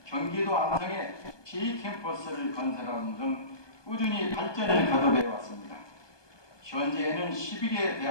경기도 안성에 제2캠퍼스를 건설하는 등 꾸준히 발전을 거듭해 왔습니다. 현재에는 12개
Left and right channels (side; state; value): right; late; 1.2 ms